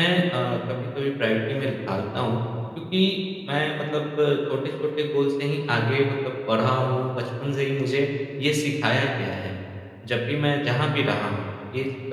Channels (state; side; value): identical; both; correlation 1.00